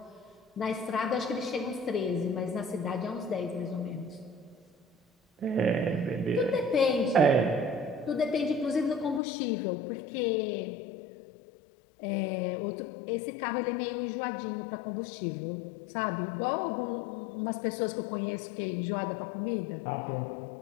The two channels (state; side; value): drops out; right; at 9.2 s